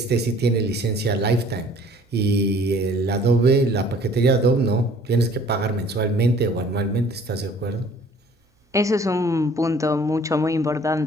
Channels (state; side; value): normal; both; correlation 0.54